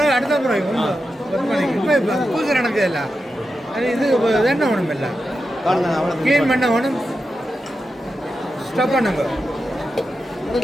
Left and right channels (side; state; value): both; normal; correlation 0.89